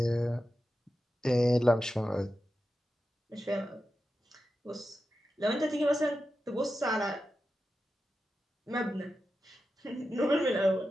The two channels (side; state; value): both; normal; correlation 0.91